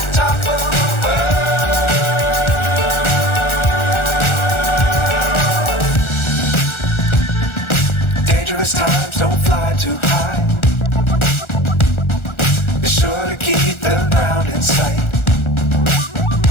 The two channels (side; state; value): right; late; 1.4 ms